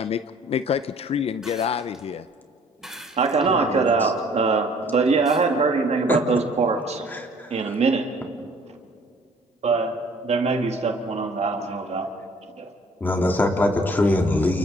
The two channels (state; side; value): normal; both; correlation 0.55